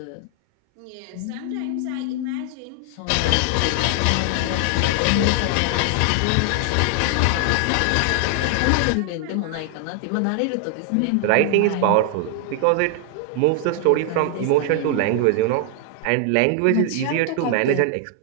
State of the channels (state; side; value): different; both; correlation 0.00